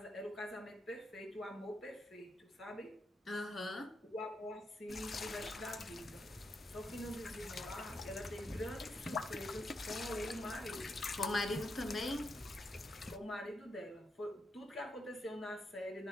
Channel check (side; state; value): both; normal; correlation 0.82